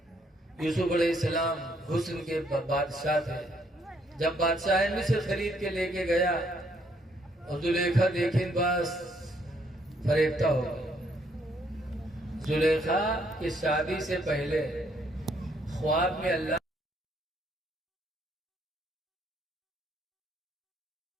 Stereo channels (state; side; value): normal; both; correlation 0.70